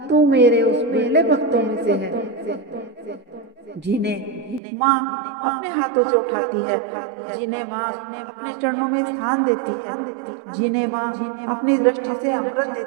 तू मेरे उस पहले भक्तों में से है जिन्हें माँ अपने हाथों से उठाती है, जिन्हें माँ अपने चरणों में स्थान देती है, जिन्हें माँ अपनी दृष्टि से अमृत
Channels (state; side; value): drops out; left; at 4.6 s